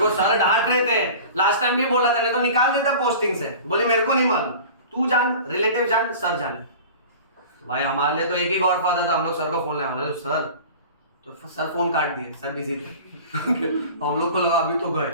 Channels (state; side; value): inverted; both; correlation -0.39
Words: को सर डांट रहे थे, लास्ट टाइम भी बोला था, नहीं तो निकाल देता पोस्टिंग से। बोले मेरे को नहीं मालूम, तू जान, रिलेटिव जान, सर जाने। तो भाई हमारे लिए तो एक ही गॉडफादर था, हम लोग सर को फोन लगाया, सर, तो सर फोन काट दिए, सर बिजी थे। हम लोग को लगा अभी तो गए,